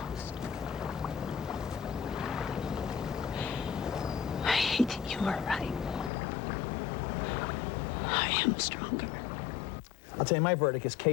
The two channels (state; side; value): drops out; right; at 6.1 s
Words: I hate that you are right. I am stronger. I'll tell you, my verdict is